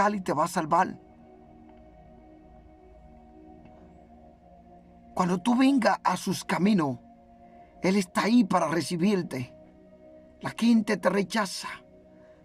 y te va a salvar. Cuando tú vengas a sus caminos, Él está ahí para recibirte. La gente te rechaza,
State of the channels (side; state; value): both; identical; correlation 1.00